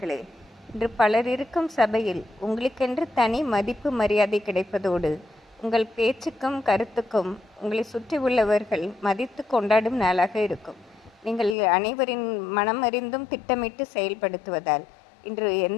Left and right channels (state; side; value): drops out; right; at 11.6 s